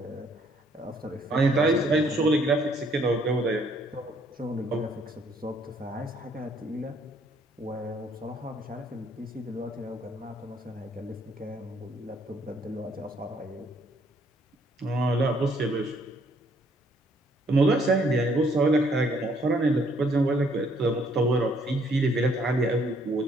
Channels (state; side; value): normal; both; correlation 0.66